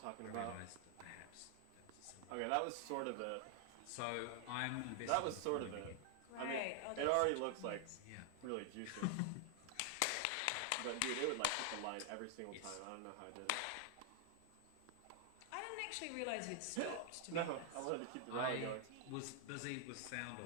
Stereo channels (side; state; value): both; different; correlation 0.00